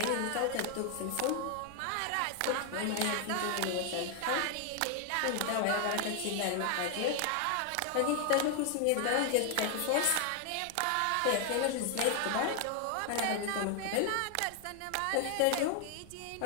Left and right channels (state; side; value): different; both; correlation 0.00